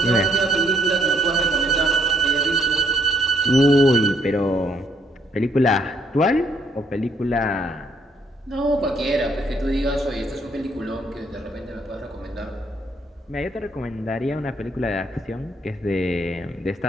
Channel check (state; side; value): normal; both; correlation 0.69